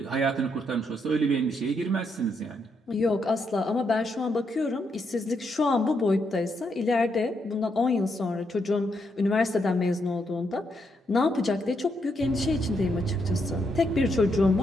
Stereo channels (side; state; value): both; normal; correlation 0.78